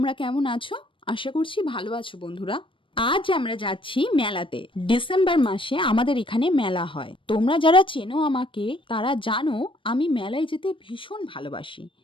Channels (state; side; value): late; right; 0.25 ms